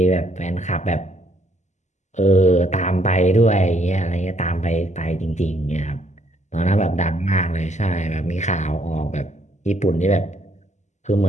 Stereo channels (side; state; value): right; late; 0.34 ms